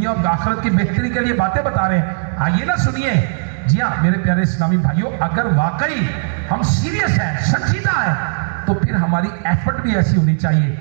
اور آخرت کی بہتری کے لیے باتیں بتا رہے ہیں، آئیے نا سنیے۔ جی ہاں میرے پیارے اسلامی بھائیوں، اگر واقعی ہم سیریس ہیں، سنجیدہ ہیں، تو پھر ہماری ایفرٹ بھی ایسی ہونی چاہیے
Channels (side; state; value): left; silent; 68 dB below the other